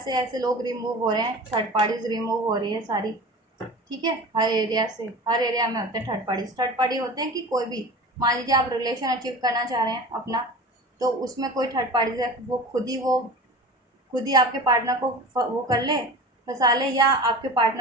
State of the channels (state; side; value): normal; both; correlation 0.35